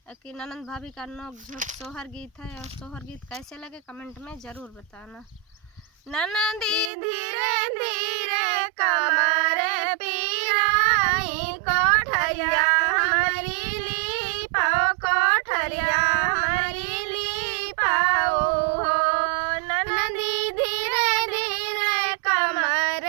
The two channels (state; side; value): drops out; left; at 6.9 s